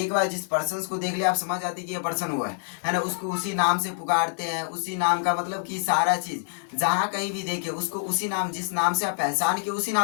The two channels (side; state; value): right; silent; 61 dB below the other